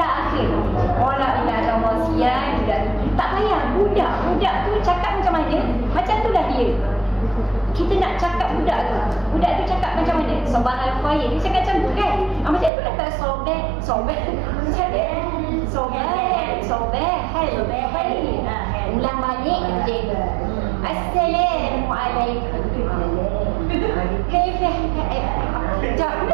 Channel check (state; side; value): drops out; left; at 12.7 s